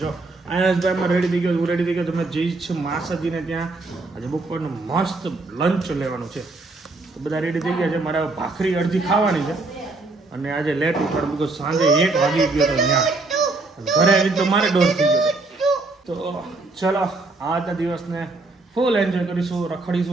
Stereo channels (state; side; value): quieter; left; 3.3 dB